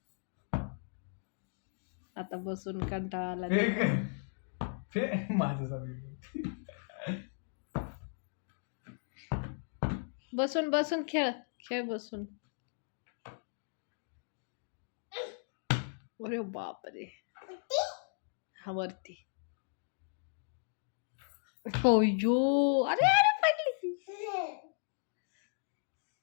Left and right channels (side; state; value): right; silent; digital silence